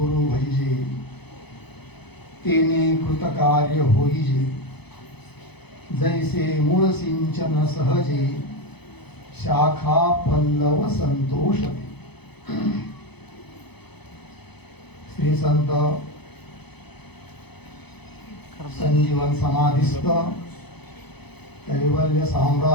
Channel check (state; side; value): late; right; 0.99 ms